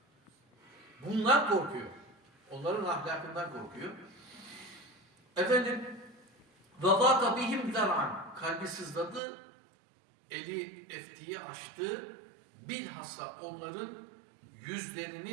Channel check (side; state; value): left; drops out; at 9.2 s